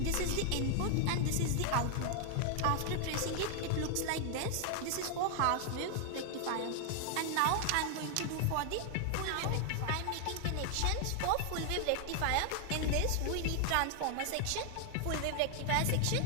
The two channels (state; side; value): different; both; correlation 0.00